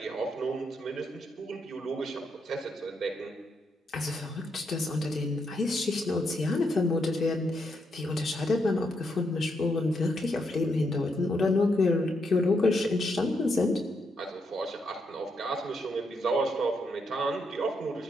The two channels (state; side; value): normal; both; correlation 0.79